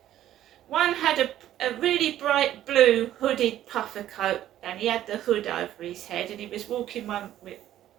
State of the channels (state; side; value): quieter; left; 12.5 dB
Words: One had a really bright blue hooded puffer coat, and he had the hood over his head, and he was walking one with